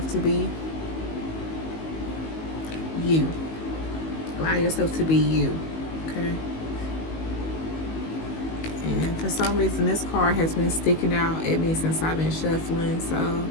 to be you. Allow yourself to be you. Okay? And for some reason, this card has been sticking out at me since I've been shuffling. So,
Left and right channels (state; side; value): late; right; 19 ms